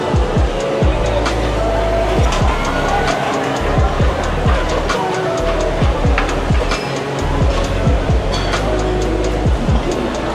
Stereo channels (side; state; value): both; identical; correlation 1.00